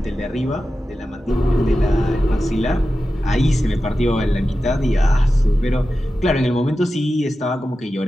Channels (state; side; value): normal; both; correlation 0.93